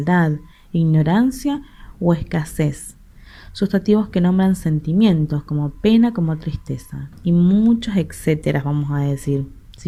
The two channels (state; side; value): identical; both; correlation 1.00